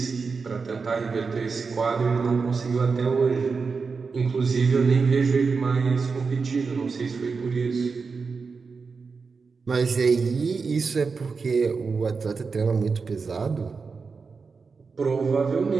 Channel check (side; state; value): left; quieter; 4.9 dB